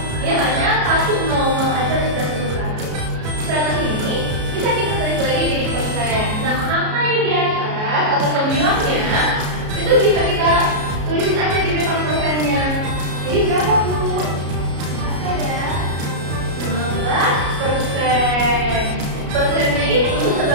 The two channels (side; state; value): left; late; 33 ms